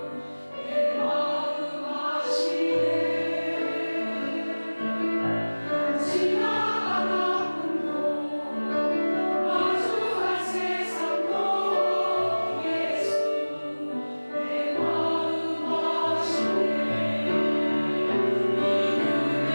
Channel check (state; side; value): inverted; both; correlation -1.00